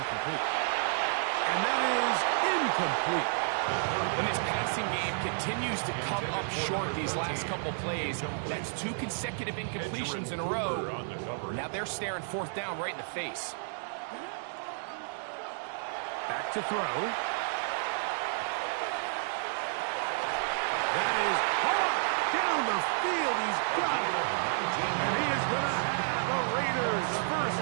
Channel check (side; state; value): left; silent; digital silence